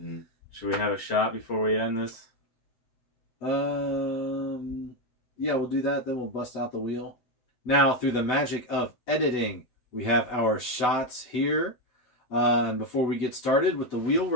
Should we have a shot before we end this? Yeah, we'll do that. Then we'll bust out the wheel. Now, through the magic of editing, we have our shots here. Before we get started with the wheel,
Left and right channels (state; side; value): late; right; 8.1 ms